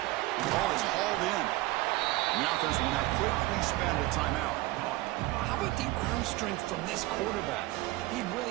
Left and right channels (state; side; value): quieter; left; 19.1 dB